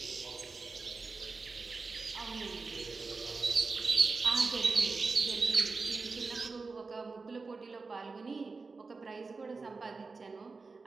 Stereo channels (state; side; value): quieter; left; 4.2 dB